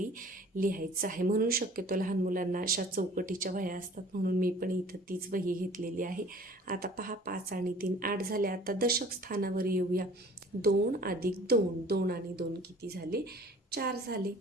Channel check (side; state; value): both; normal; correlation 0.49